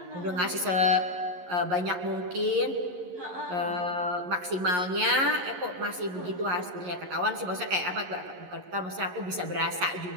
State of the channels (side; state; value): left; late; 11 ms